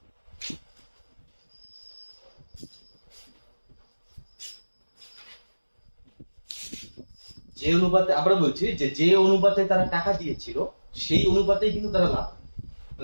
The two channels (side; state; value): both; inverted; correlation -1.00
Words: যে অনুপাতে আমরা বলছি যে অনুপাতে তারা টাকা দিয়েছিল সেই অনুপাতেই কিন্তু তারা লাভ,